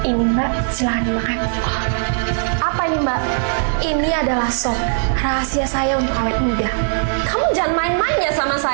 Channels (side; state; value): left; silent; 58 dB below the other